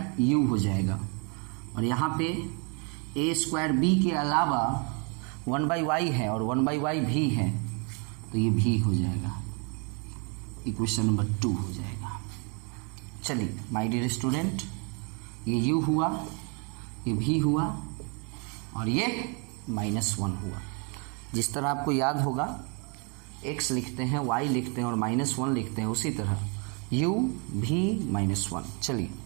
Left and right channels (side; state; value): left; quieter; 35.0 dB